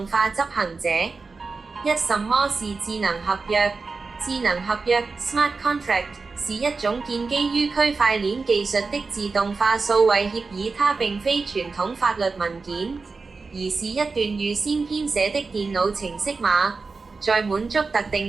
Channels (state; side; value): quieter; left; 4.2 dB